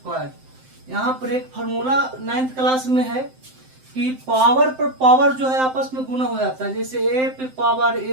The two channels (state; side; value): late; left; 7.7 ms